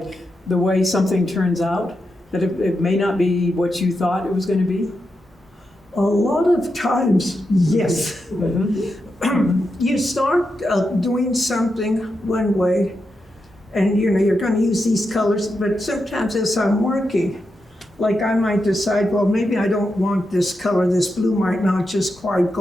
the way something turns out? That it may not be what you thought it was going to be? a lot of times, yes. You start doing something one way, and you're going to use these colors, but sometimes as I'm working, like I might decide, well, maybe I don't want this color, this blue might not just quite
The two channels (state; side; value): normal; both; correlation 0.87